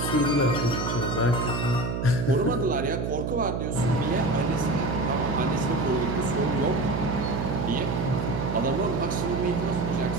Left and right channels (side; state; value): right; noise; hum, 2 dB below the sound